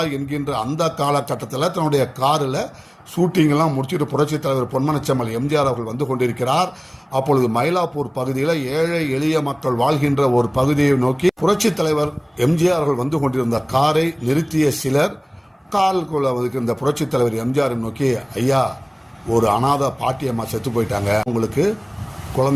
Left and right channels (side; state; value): both; identical; correlation 1.00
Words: என்கின்ற அந்த காலகட்டத்தில் தன்னுடைய காரில் ஷூட்டிங்கெல்லாம் முடிச்சுட்டு புரட்சித் தலைவர் பொன்மனச்செம்மல் எம்ஜிஆர் அவர்கள் வந்து கொண்டிருக்கிறார். அப்பொழுது மயிலாப்பூர் பகுதியில் ஏழை எளிய மக்கள் வாழ்கின்ற ஒரு பகுதியை நோக்கி புரட்சித் தலைவர் எம்ஜிஆர் அவர்கள் வந்து கொண்டிருந்த காரை நிறுத்திய சிலர் காலுக்குள்ள இந்த புரட்சித் தலைவர் எம்ஜிஆர் நோக்கி, ஐயா, ஒரு அனாதை பாட்டியம்மா செத்து போயிட்டாங்க, உங்களுக்கு